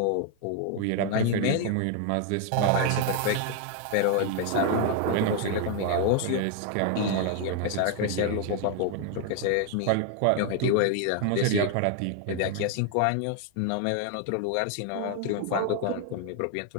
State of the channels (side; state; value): both; different; correlation 0.00